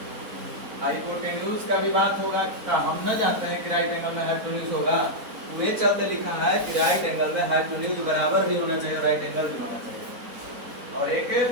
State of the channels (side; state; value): left; late; 4.1 ms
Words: हाइपोटेन्यूज का भी बात होगा, का हम न जानते हैं कि राइट एंगल में हाइपोटेन्यूज होगा, वो ये चलते लिखा है कि राइट एंगल में हाइपोटेन्यूज बराबर भी होना चाहिए, राइट एंगल भी होना चाहिए, और एक